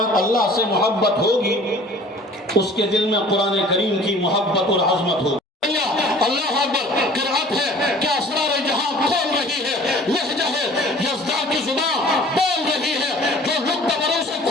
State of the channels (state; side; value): normal; both; correlation 0.48